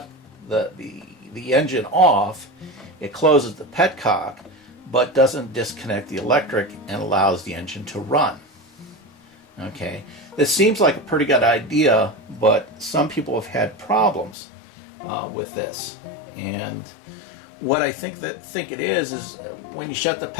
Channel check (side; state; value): right; drops out; at 14.4 s